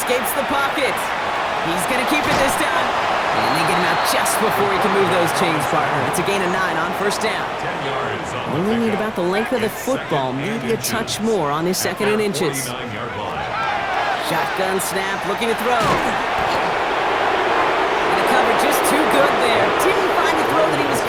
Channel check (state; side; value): identical; both; correlation 1.00